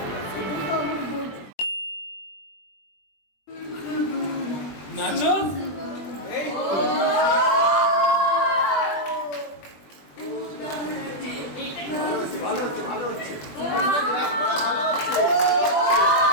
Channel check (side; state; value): right; late; 21 ms